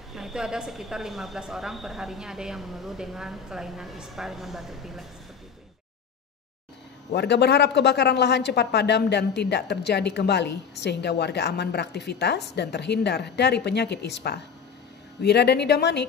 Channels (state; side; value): quieter; right; 6.7 dB